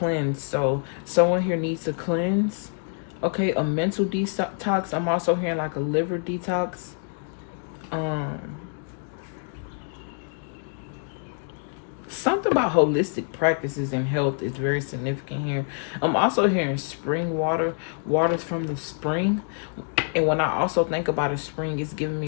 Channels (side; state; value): right; silent; 59 dB below the other